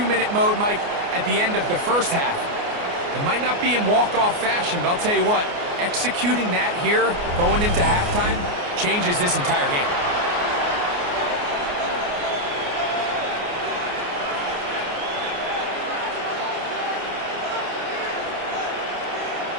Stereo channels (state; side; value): late; left; 29 ms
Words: mode, Mike, at the end of the 1st half. It might not be in walk-off fashion, but I'll tell you what, executing that here going into halftime changes this entire game.